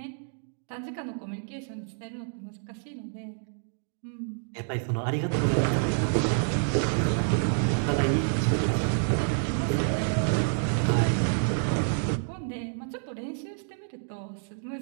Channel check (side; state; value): left; silent; digital silence